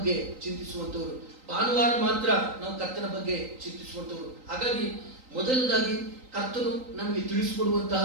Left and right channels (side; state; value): left; late; 3.8 ms